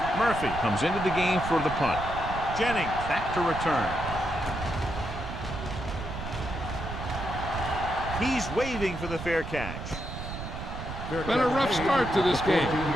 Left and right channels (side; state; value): right; noise; rumble, 8 dB below the sound